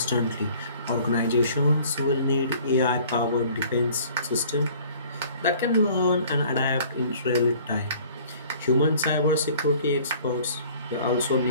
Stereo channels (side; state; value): both; inverted; correlation -0.52